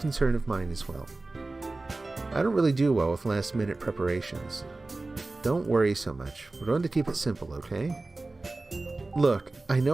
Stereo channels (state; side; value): quieter; left; 3.2 dB